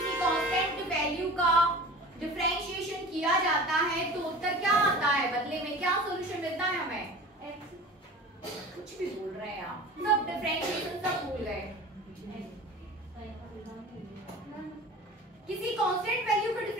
कांस्टेंट वैल्यू का डिफरेंशिएशन किया जाता है तो उत्तर क्या आता है, बदले में क्या सॉल्यूशन मिलता है हमें, कुछ भी बोल रहे हैं आप, सब डिफरेंशिएशन सब भूल गए। किसी कांस्टेंट वैल्यू का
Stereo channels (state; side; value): normal; both; correlation 0.38